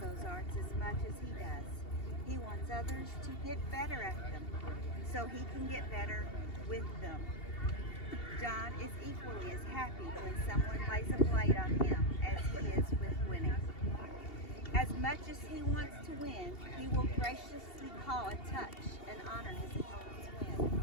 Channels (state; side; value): late; right; 2.8 ms